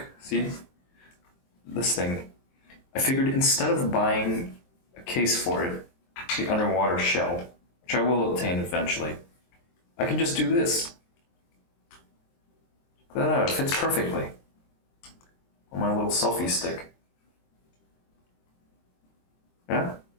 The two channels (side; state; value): right; late; 23 ms